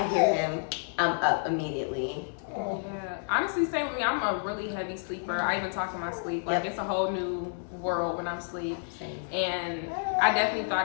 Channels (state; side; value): silent; right; digital silence